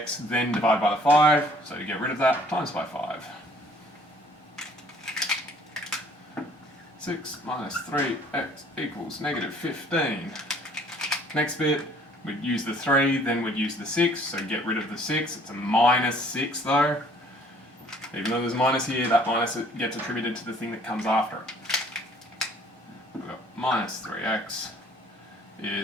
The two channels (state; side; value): normal; both; correlation 0.57